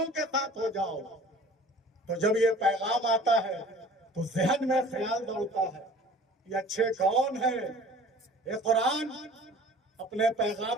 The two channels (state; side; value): normal; both; correlation 0.46